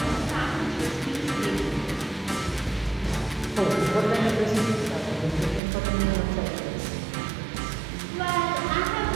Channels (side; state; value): left; drops out; at 5.6 s